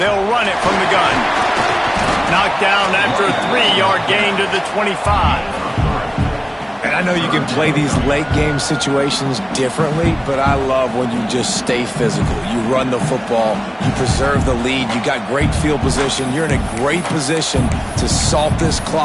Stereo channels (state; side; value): identical; both; correlation 1.00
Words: run it from the gun. Knocked down after a 3-yard gain to the 25. And I know you can play these late game situations differently, but I love when you just stay physical. You run the football, you preserve the lead, you got great field position. You're in a great position to salt this